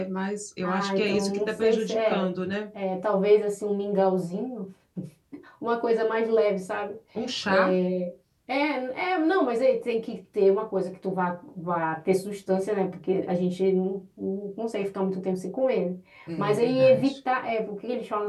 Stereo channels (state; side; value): identical; both; correlation 1.00